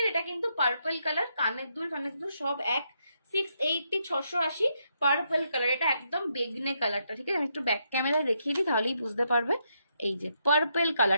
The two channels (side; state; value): both; inverted; correlation -0.78